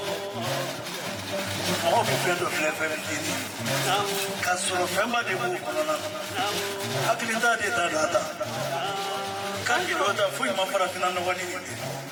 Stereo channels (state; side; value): identical; both; correlation 1.00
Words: mɔgɔ bɛ fɛn dɔ filɛ fɛn fitinin ka sɔrɔ fɛnba de b'o kɔnɔna na hakilita de t'a da ta kan k'i dɔ ta foyi ma farafinna nɔgɔ ni nin tɛ